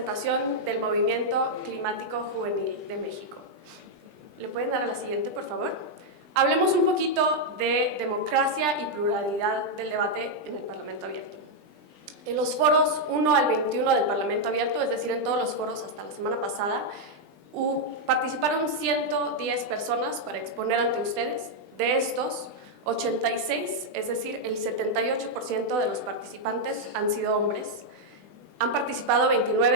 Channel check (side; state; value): left; late; 20 ms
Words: del Movimiento Climático Juvenil de México. ¿Le pueden dar a la siguiente, por favor? Hablemos un poquito de democracia y pluralidad del debate en el Parlamento Abierto. En los foros 1 al 21 del Parlamento Abierto, es decir, en todos los foros hasta la semana pasada, participaron 110 personas para exponer ante ustedes. De estos, 86, es decir, el 78% de los participantes han sido hombres. Han participado